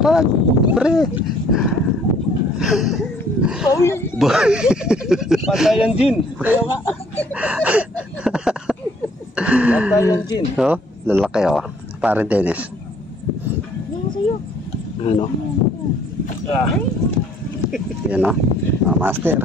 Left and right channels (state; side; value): normal; both; correlation 0.61